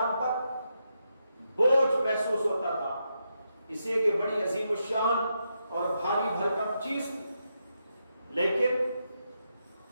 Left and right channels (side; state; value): both; inverted; correlation -0.84